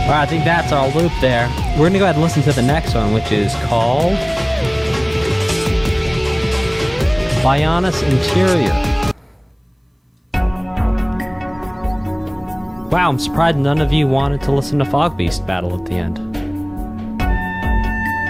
Alright, I think that's our loop there. We're gonna go ahead and listen to the next one, which is called Bionis Interior. Wow, I'm surprised none of you wanted to listen to Fog Beast Battle at the end.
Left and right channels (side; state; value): both; identical; correlation 1.00